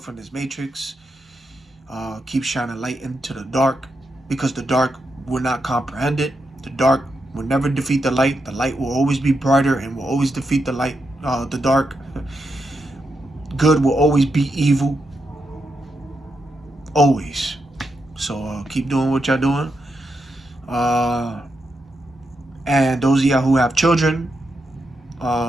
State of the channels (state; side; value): normal; both; correlation 0.85